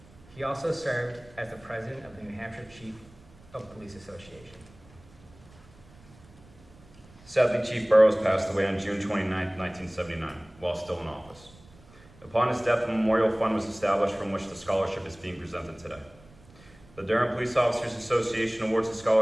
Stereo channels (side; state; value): right; noise; rumble, 24 dB below the sound